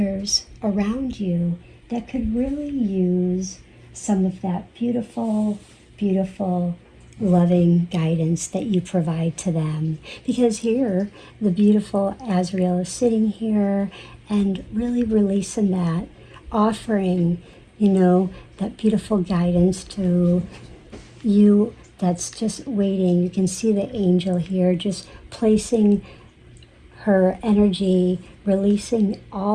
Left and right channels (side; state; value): both; identical; correlation 1.00